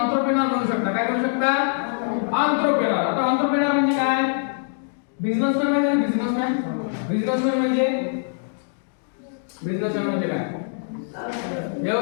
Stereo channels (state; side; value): silent; right; digital silence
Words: बनू शकता. काय बनू शकता? एंटरप्रेन्योर. आता एंटरप्रेन्योर म्हणजे काय? बिझनेसमॅन म्हणजे बिझनेसमॅन. बिझनेसमॅन म्हणजे काय?